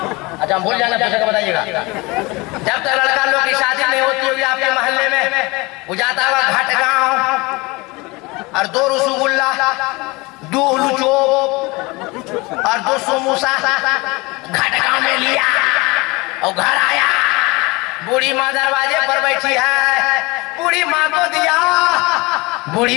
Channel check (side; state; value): right; quieter; 24.3 dB